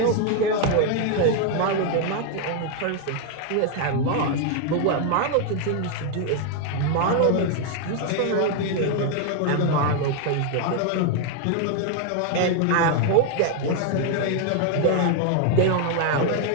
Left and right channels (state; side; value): different; both; correlation 0.00